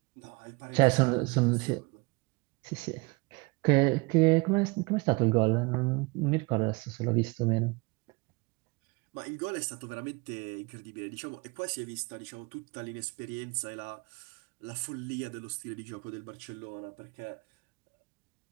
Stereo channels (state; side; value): quieter; left; 27.1 dB